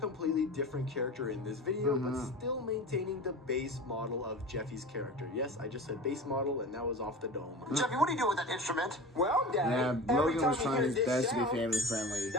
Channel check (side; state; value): both; normal; correlation 0.33